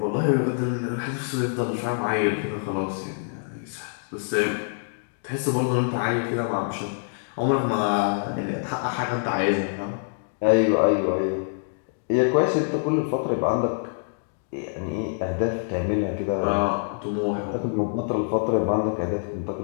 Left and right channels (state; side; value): silent; right; digital silence